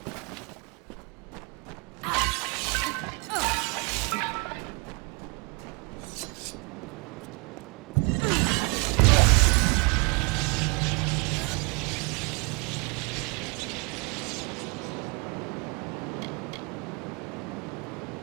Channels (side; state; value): left; quieter; 32.1 dB